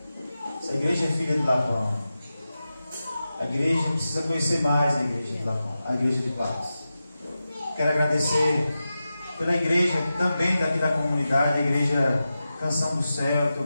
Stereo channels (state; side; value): inverted; both; correlation -0.92